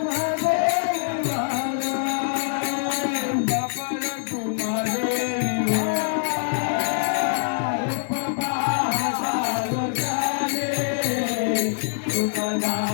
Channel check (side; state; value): right; silent; digital silence